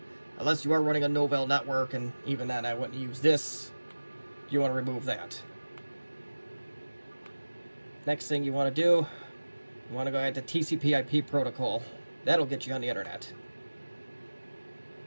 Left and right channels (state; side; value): inverted; both; correlation -1.00